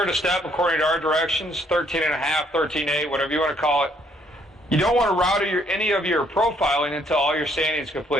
a step according to our directions, 13.5, 13.8, whatever you want to call it. You don't want to router any of your profiling until all your sanding is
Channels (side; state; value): both; normal; correlation 0.67